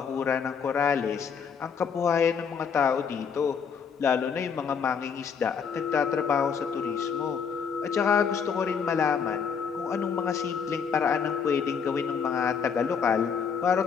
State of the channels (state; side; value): quieter; right; 6.5 dB